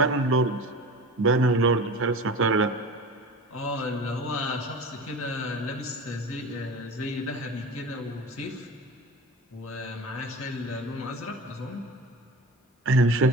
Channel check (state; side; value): normal; both; correlation 0.33